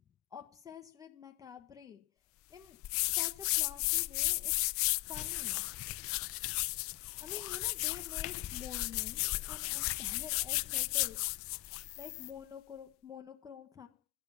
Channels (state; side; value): quieter; right; 19.6 dB